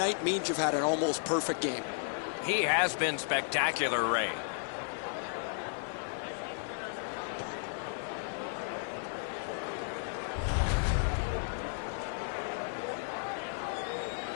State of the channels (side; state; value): right; silent; 55 dB below the other